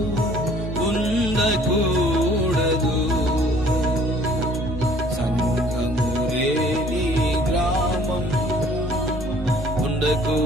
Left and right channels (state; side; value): normal; both; correlation 0.56